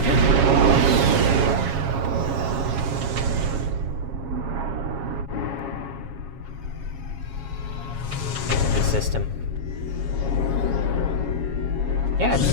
The system. Yeah, the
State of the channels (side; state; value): left; late; 7.3 ms